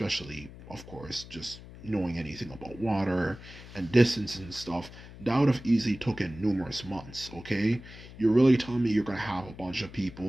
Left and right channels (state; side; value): noise; left; hum, 16 dB below the sound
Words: of course, just knowing anything about water and distance and stuff, that would have easily taken numerous months, okay? You're really telling me you're going to have a bunch of